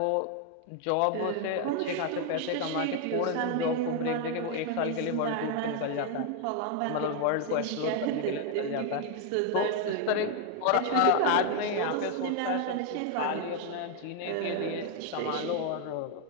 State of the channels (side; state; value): both; different; correlation 0.01